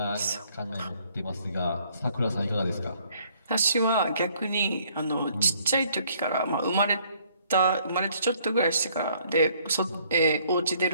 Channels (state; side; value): inverted; both; correlation -0.64